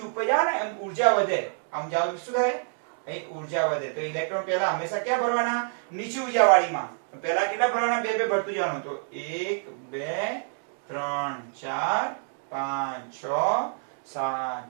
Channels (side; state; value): left; silent; 55 dB below the other